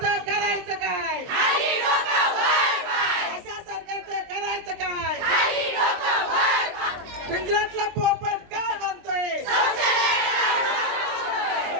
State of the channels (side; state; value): left; late; 23 ms